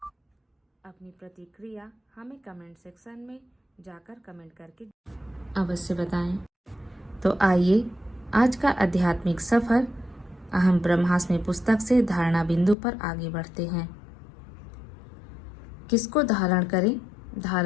अपनी प्रतिक्रिया हमें कमेंट सेक्शन में जाकर कमेंट करके अवश्य बताएं। तो आइए आज का आध्यात्मिक सफर अहम ब्रह्मास्मि पुस्तक से धारणा बिंदु पर आगे बढ़ते हैं। किसको धारण करें?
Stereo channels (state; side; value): drops out; right; at 12.8 s